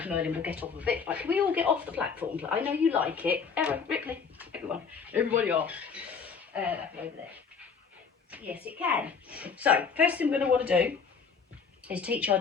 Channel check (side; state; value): right; quieter; 5.9 dB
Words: Merlin will get off of it. Right, can we all get off the platform? I know you like it. Ripley, everybody off. Over there. Yes, it can. So, first thing we're going to want to do is teach our